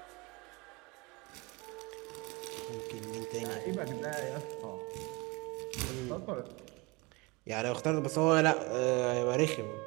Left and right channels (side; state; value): left; quieter; 25.6 dB